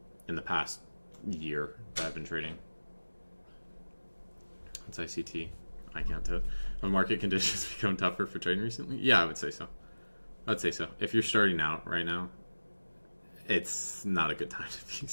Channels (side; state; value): both; inverted; correlation -1.00